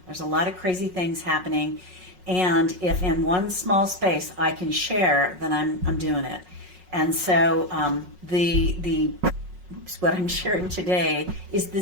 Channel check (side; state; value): left; late; 5.5 ms